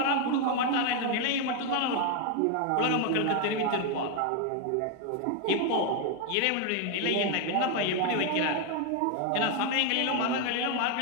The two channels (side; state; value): both; different; correlation 0.01